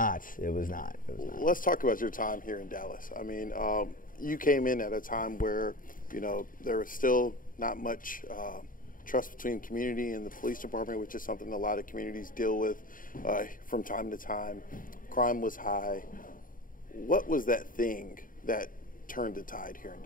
It was not. Let's talk about your time here in Dallas. I mean, you came in at a time where, there was still not much trust between community and the police department, which is something a lot of communities deal with from time to time. Crime was high. What was that thing that turned the tide here in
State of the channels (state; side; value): late; right; 0.40 ms